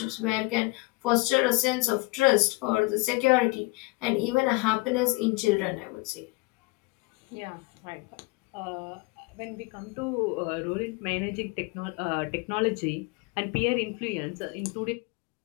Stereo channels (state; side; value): quieter; right; 25.1 dB